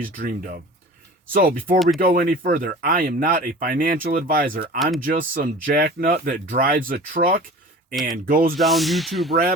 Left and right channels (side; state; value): both; normal; correlation 0.39